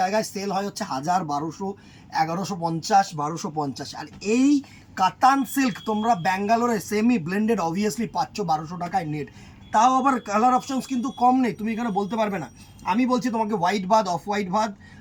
সেল হয় হচ্ছে 1000, 1200, 1150, 1250। আর এই কাতান সিল্ক তোমরা ব্যাঙ্গালোরে সেমি ব্লেন্ডেড অবভিয়াসলি পাচ্ছ 1200 টাকায় নেট। তাও আবার কালার অপশনস কিন্তু কম নেই, তুমি এখানে বলতে পারবে না। আমি বলছি তোমাকে হোয়াইট বাদ, অফ হোয়াইট বাদ,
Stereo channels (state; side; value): identical; both; correlation 1.00